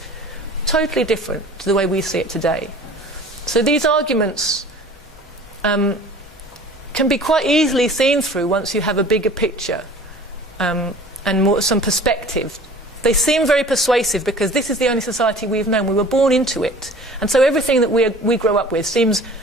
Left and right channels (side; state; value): both; normal; correlation 0.45